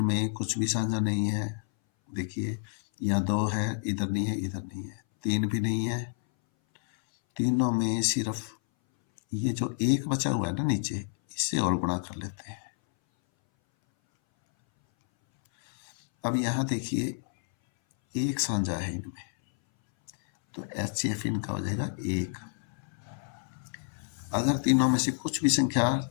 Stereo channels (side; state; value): right; silent; 58 dB below the other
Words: कुछ भी साझा नहीं है। देखिए, यहाँ 2 है, इधर नहीं है, इधर नहीं है। 3 भी नहीं है। तीनों में सिर्फ ये जो 1 बचा हुआ है ना नीचे, इससे और गुणा कर लेते हैं। अब यहाँ देखिए 1 साझा है इनमें, तो HCF इनका हो जाएगा 1। अगर तीनों में से कुछ भी संख्या